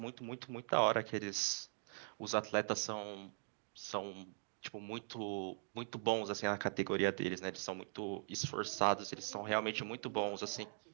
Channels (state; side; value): silent; left; digital silence